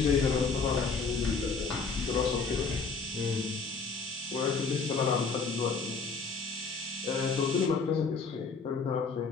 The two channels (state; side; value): quieter; right; 4.7 dB